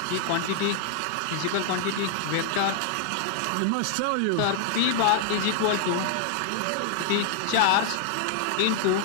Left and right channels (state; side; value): different; both; correlation -0.01